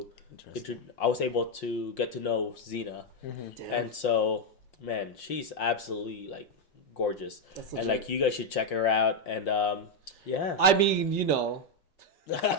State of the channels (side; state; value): right; late; 5.7 ms